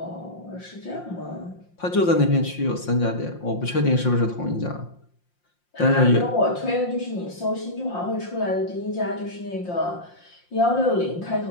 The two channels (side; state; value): right; late; 5.7 ms